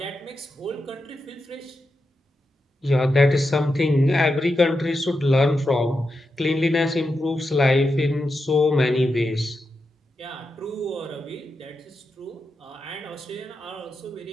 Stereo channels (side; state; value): both; normal; correlation 0.87